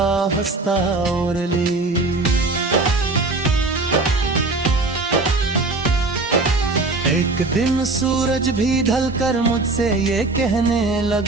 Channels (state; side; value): quieter; left; 3.3 dB